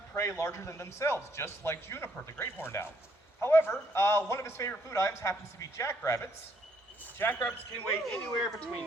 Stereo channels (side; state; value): both; normal; correlation 0.69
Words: prey larger than themselves, just like Juniper, the great horned owl. However, one of his favorite food items happens to be jackrabbits. Jackrabbits can weigh anywhere